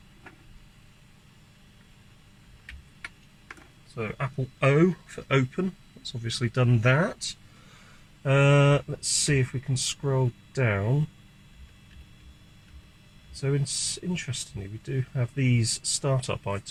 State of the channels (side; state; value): both; identical; correlation 1.00